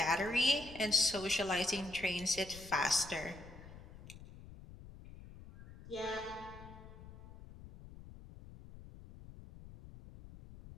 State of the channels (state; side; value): noise; left; rumble, 16 dB below the sound